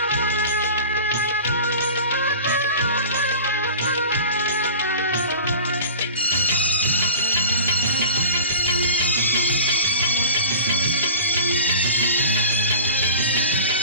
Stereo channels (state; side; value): inverted; both; correlation -0.37